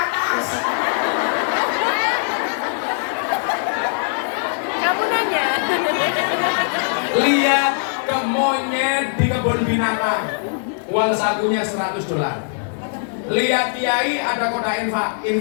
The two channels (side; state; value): right; silent; 64 dB below the other